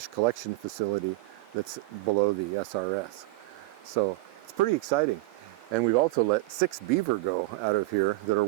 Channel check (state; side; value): quieter; left; 20.1 dB